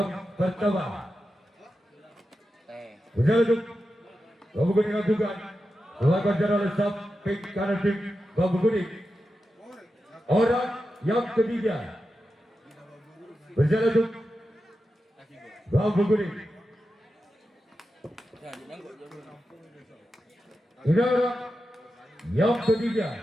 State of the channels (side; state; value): both; normal; correlation 0.90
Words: pertama. Jaratim Bambu Kuning lakukan lakukan jarak lesap pink kanan tim Bambu Kuning. Orang yang ketiga berjalan untuk Bambu Kuning. Ini orang yang ketiga